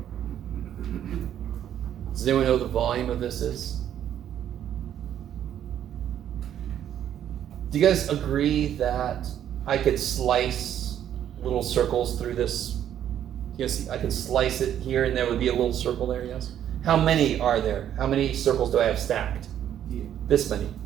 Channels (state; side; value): quieter; left; 10.4 dB